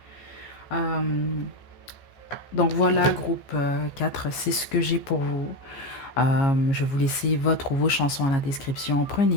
Euh, donc voilà, groupe 4, c'est ce que j'ai pour vous. Je vais vous laisser votre ou vos chansons à la description.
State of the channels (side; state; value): right; late; 15 ms